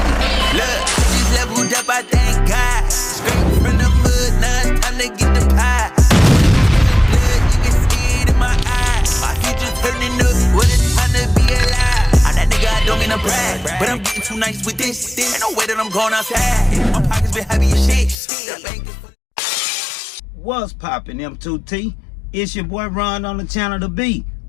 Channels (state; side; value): drops out; right; at 18.2 s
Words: But I'm getting too nice with this. Ain't no way that I'm going outside. My pockets been heavy as shit. What's poppin', M2T? It's your boy Ron on the channel to be.